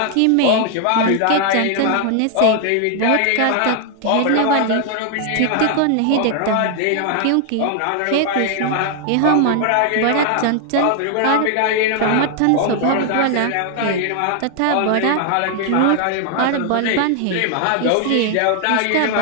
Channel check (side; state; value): both; different; correlation 0.00